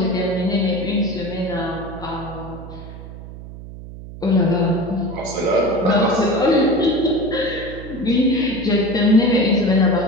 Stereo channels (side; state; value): right; noise; hum, 13 dB below the sound